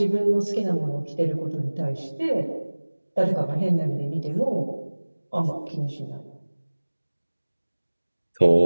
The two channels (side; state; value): both; inverted; correlation -1.00